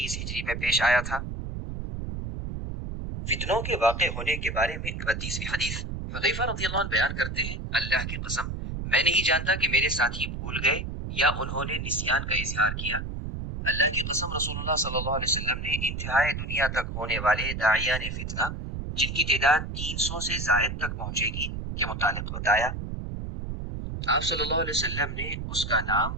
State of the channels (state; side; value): noise; right; rumble, 5 dB below the sound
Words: ہجری میں پیش آیا تھا۔ فتنوں کے واقع ہونے کے بارے میں 32ویں حدیث حذیفہ رضی اللہ عنہ بیان کرتے ہیں، اللہ کی قسم میں نہیں جانتا کہ میرے ساتھی بھول گئے یا انہوں نے نسیان کا اظہار کیا۔ اللہ کی قسم رسول اللہ صلی اللہ علیہ وسلم نے انتہائی دنیا تک ہونے والے داعیان فتنہ جن کی تعداد 300 سے زائد تک پہنچے گی کے متعلق بتایا۔ آپ صلی اللہ علیہ وسلم نے اس کا نام،